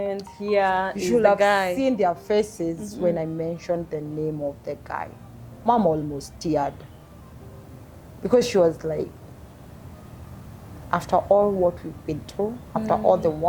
here You is should the have guy. seen their faces when I mentioned the name of the guy. Mom almost teared. Because she was like, after all what we've been through, after all the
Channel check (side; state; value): both; identical; correlation 1.00